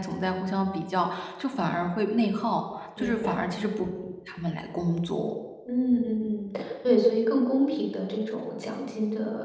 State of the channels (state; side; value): identical; both; correlation 1.00